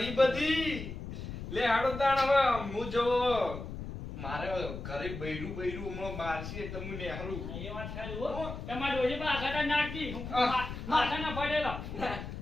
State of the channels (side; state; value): left; noise; rumble, 8 dB below the sound